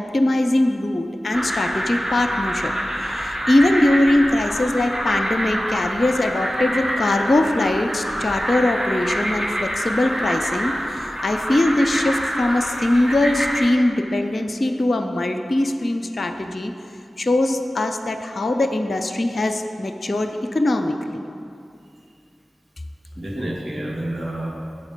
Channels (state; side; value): normal; both; correlation 0.95